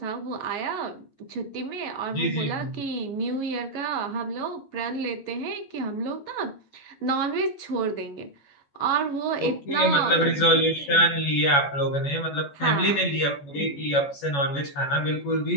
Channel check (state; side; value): late; right; 14 ms